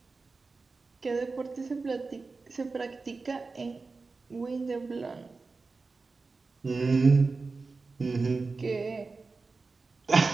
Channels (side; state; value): left; quieter; 4.0 dB